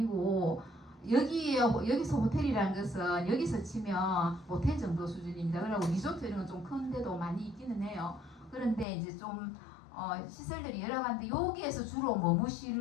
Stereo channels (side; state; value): right; drops out; at 8.8 s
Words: 여기서 호텔이라는 것은 여기서 치면 호텔 정도 수준입니다. 그리고 리조트 이런 건 좀 큰데도 많이 있기는 해요. 그런데 이제 좀 시설들이 여러 가지인데 여기에서 주로